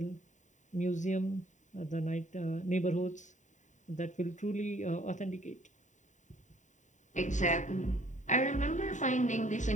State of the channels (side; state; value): right; late; 0.36 ms